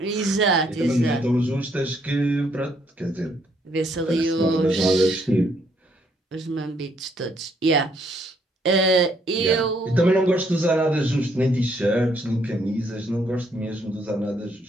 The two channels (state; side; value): normal; both; correlation 0.70